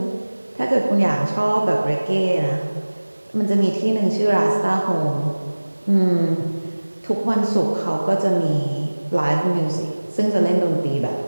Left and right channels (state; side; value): inverted; both; correlation -1.00